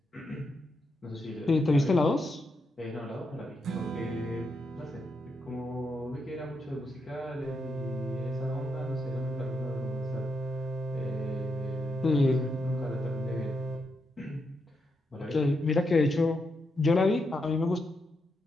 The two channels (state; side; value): normal; both; correlation 0.82